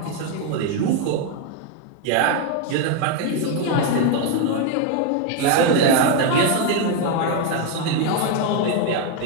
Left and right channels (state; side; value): different; both; correlation 0.01